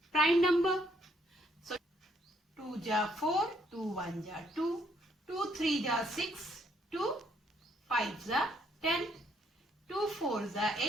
prime number. So 2 is 4, 2 1 is 2, 2 3 is 6, 2 5 is 10, 2 4 is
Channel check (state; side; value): normal; both; correlation 0.70